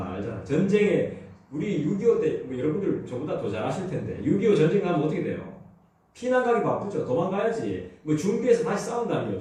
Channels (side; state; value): both; identical; correlation 1.00